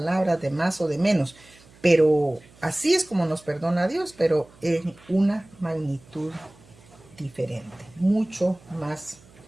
de más o de menos. Pero así es como nos perdona Dios, pero en una magnitud diferente, mucho más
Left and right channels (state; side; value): noise; right; hum, 26 dB below the sound